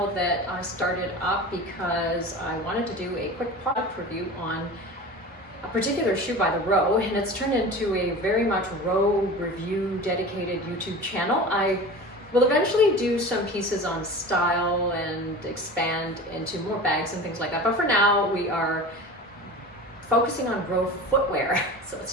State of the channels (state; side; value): normal; both; correlation 0.34